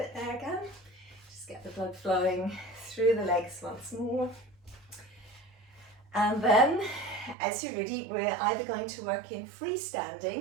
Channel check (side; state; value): left; drops out; at 7.4 s